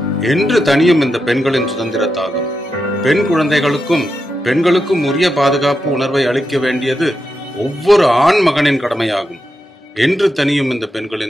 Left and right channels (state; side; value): normal; both; correlation 0.87